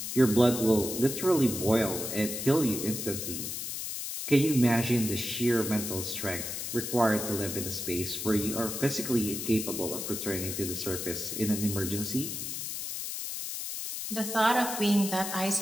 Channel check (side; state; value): left; noise; hiss, 5 dB below the sound